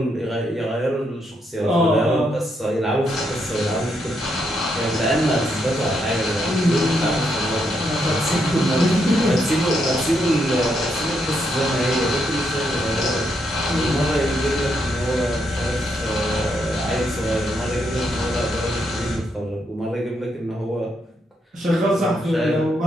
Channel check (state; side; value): normal; both; correlation 0.78